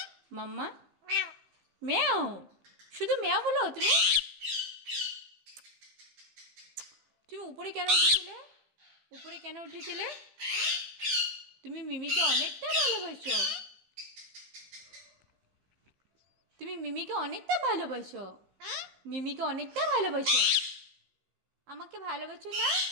मम्मा म्याओ शुद्ध म्याओ बोलो তুমি উপরে কেন উঠেছিলে উপরে কেন উঠেছিলে তুমি মিমিকে অনেকটা ভালোবাসো তুমি মিমিকে অনেকটা ভালোবাসো মিমিকে অনেকটা ভালোবাসো আমাকে ভালোবাসো না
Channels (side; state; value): left; late; 15 ms